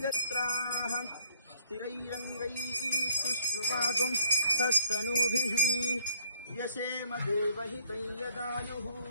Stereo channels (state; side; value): inverted; both; correlation -0.60